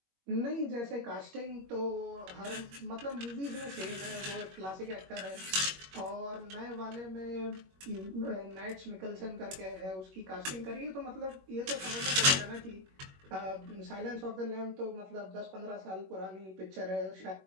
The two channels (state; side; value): late; left; 21 ms